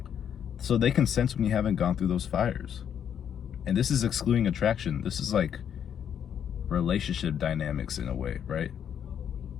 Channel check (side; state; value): right; quieter; 8.7 dB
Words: So they can sense when you haven't gone through those fires. And this is excluding attraction. This is like relationship dynamics in a way, right?